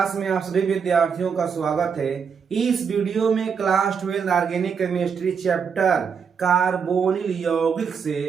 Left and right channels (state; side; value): quieter; left; 6.4 dB